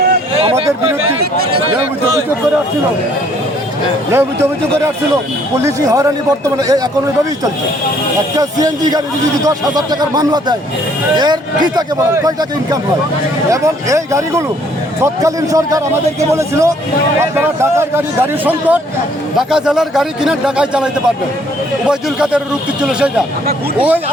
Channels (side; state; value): both; normal; correlation 0.63